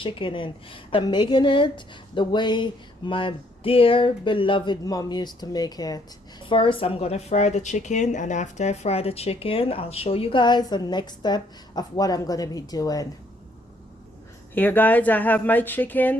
in. I'm making it the way my dear beloved mom used to make it. First, I'm gonna fry the chicken, and after I fry the chicken, I'll show you guys the next step of what I'm gonna be doing. Here guys, I have my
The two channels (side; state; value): both; normal; correlation 0.68